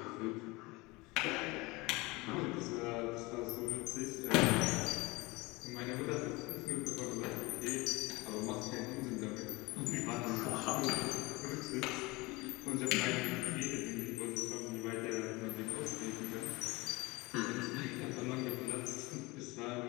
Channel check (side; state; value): right; quieter; 23.6 dB